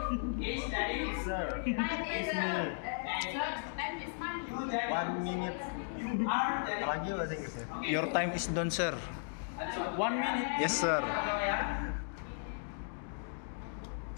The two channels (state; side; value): silent; right; digital silence